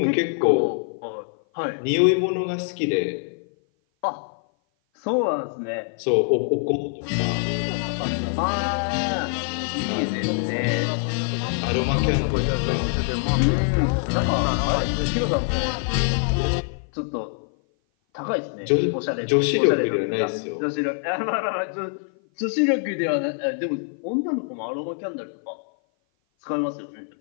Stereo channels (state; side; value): silent; right; 56 dB below the other